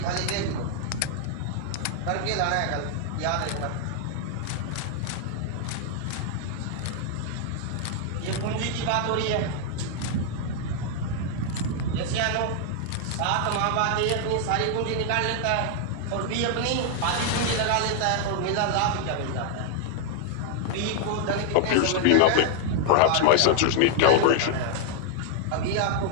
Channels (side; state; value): both; different; correlation 0.00